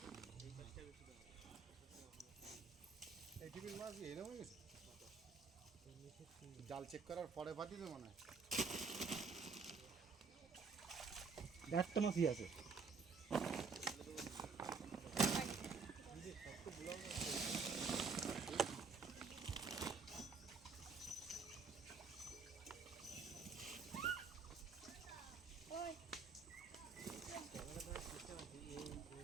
জাল চেক করার পরে পাঠিয়ে দেবো না, একটা মাছই আছে।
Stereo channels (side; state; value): left; quieter; 5.0 dB